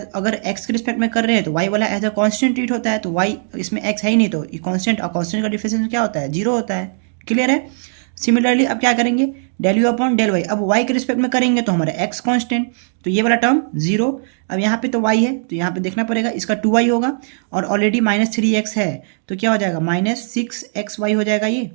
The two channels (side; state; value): left; silent; digital silence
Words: अगर x के रिस्पेक्ट में कर रहे हैं तो y वाला एज अ कांस्टेंट ट्रीट होता है, तो y इसमें x है ही नहीं, तो ये कांस्टेंट और कांस्टेंट का डिफरेंशिएशन क्या होता है, 0 होता है। क्लियर है। सिमिलरली अब क्या करेंगे, del you upon del y, अब y के रिस्पेक्ट में करेंगे तो हमारा x कांस्टेंट, तो ये वाला टर्म 0। अब यहाँ पे तो y है तो यहाँ पे देखना पड़ेगा, इसका 2y होगा और ऑलरेडी -3x है, तो क्या हो जाएगा -6xy हो जाएगा। ये